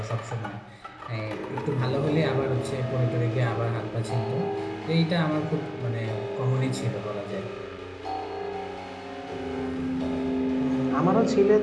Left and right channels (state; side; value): identical; both; correlation 1.00